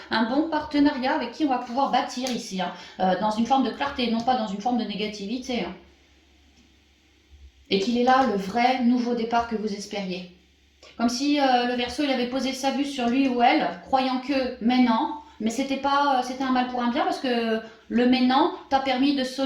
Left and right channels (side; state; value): both; identical; correlation 1.00